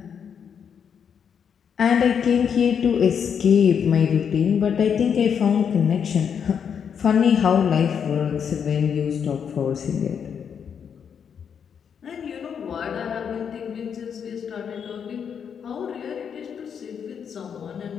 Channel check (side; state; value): right; quieter; 7.4 dB